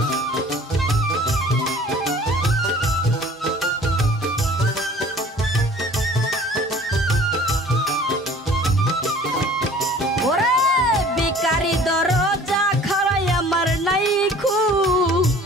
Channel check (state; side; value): normal; both; correlation 0.49